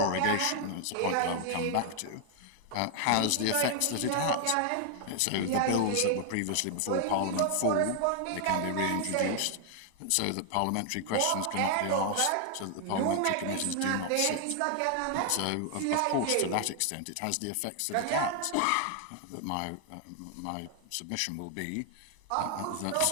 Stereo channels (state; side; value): different; both; correlation 0.00